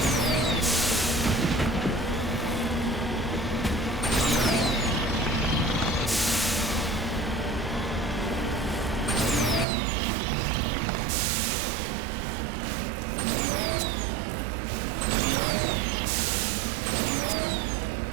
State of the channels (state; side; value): drops out; left; at 9.7 s